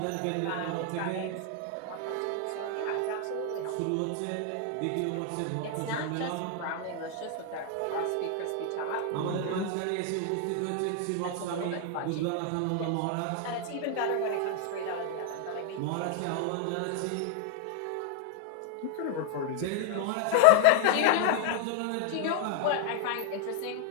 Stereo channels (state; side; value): different; both; correlation 0.00